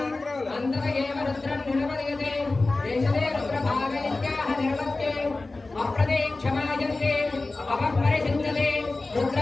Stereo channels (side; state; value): right; quieter; 3.3 dB